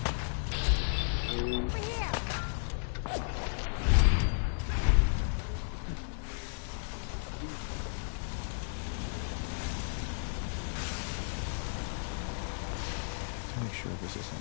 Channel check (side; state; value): right; silent; digital silence